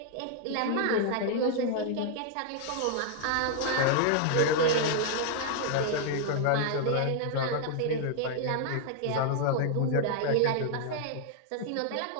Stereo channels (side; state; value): both; different; correlation 0.00